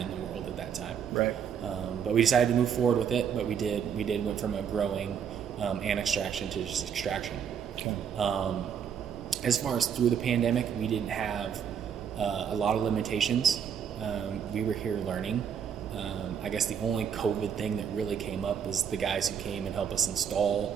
the world at that time. But we decided to move forward with it. But we did went from a growing and extraction to just extraction. as far as through the pandemic, we didn't have a lot of limitations. We were here learning. I guess the only COVID thing that really came up was the guys who came and helped us install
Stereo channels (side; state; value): left; quieter; 7.8 dB